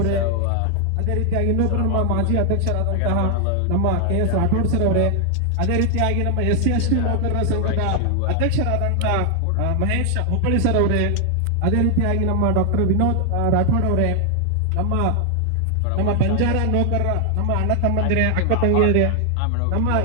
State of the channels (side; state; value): both; different; correlation 0.00